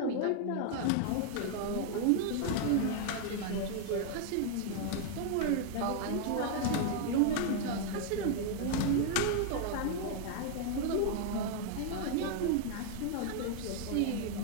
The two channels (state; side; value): different; both; correlation 0.00